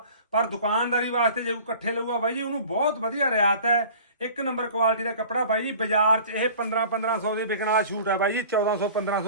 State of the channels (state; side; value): inverted; both; correlation -0.44